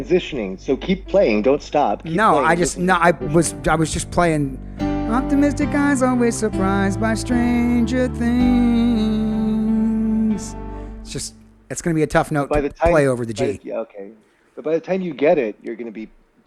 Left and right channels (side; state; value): both; identical; correlation 1.00